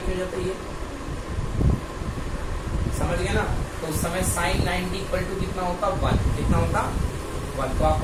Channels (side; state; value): both; identical; correlation 1.00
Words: क्यों जाता, ये समझ गए ना। तो उस समय साइन 90 इक्वल टू कितना होता, 1। कितना होता, 1। तो